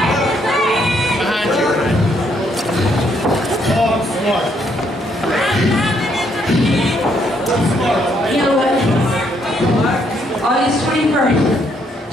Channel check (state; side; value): normal; both; correlation 0.72